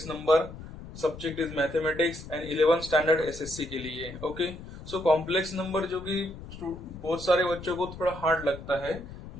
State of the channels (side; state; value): left; noise; rumble, 13 dB below the sound